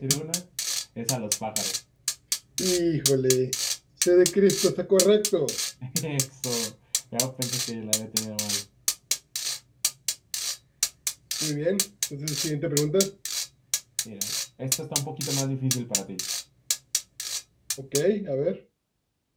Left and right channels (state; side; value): identical; both; correlation 1.00